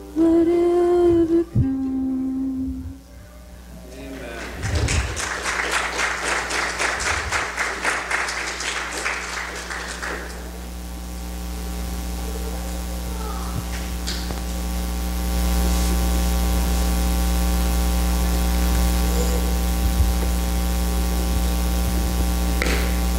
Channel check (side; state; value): both; identical; correlation 1.00